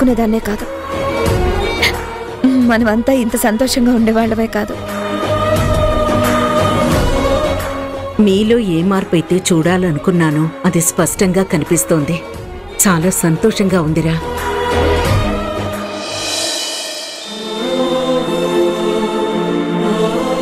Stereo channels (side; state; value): both; identical; correlation 1.00